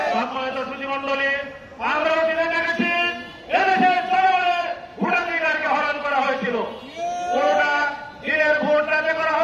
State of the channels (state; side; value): identical; both; correlation 1.00